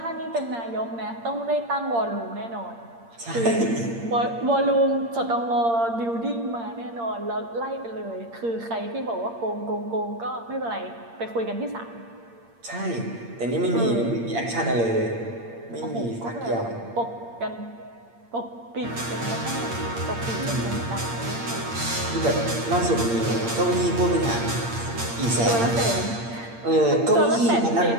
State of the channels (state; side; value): late; left; 8.7 ms